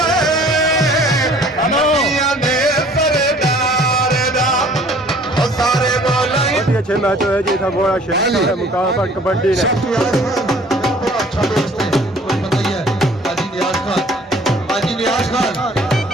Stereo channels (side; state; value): both; normal; correlation 0.53